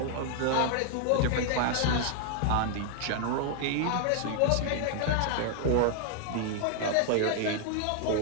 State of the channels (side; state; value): both; different; correlation 0.00